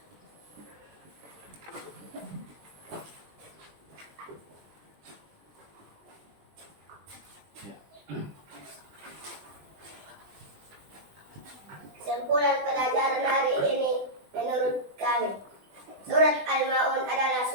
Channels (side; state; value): left; late; 20 ms